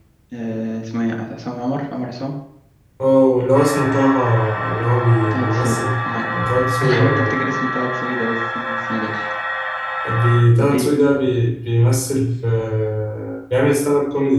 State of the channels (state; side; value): identical; both; correlation 1.00